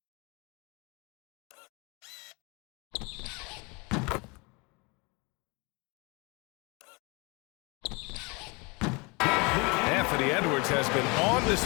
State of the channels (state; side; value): quieter; right; 28.5 dB